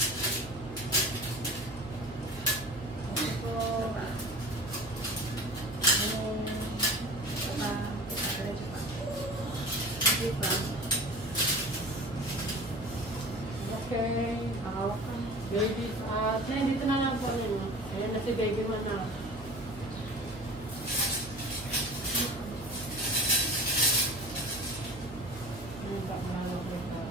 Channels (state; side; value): noise; right; hum, 16 dB below the sound